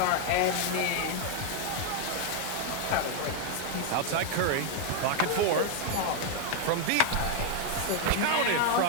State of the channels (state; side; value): different; both; correlation 0.00